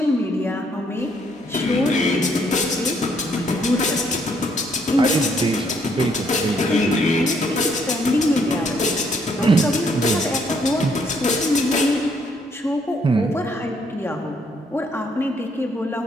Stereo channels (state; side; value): normal; both; correlation 0.69